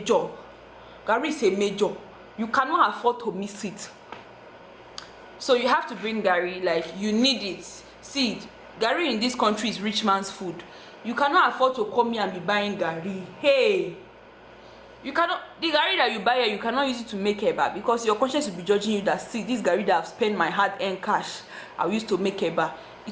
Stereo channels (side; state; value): both; identical; correlation 1.00